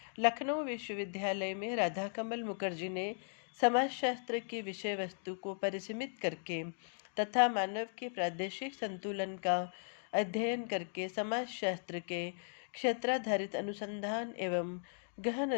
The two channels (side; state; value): right; silent; digital silence